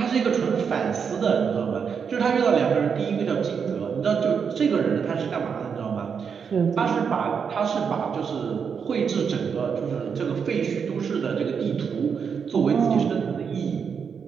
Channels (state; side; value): quieter; left; 6.5 dB